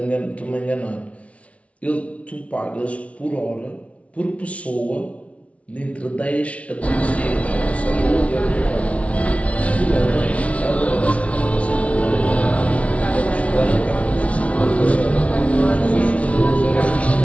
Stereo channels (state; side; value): late; right; 0.064 ms